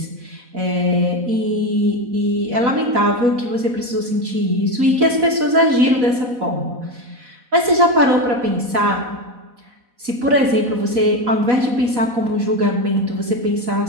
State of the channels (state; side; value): late; left; 4.1 ms